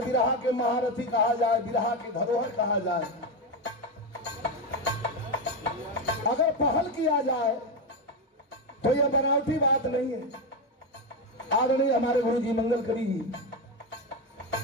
बिरहा के महारथी कहा जाए, बिरहा के धरोहर कहा जाए। अगर पहल किया जाए तो यह बनावटी बात नहीं है। आदरणीय हमारे गुरु जी मंगल कवि जी,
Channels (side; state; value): both; normal; correlation 0.11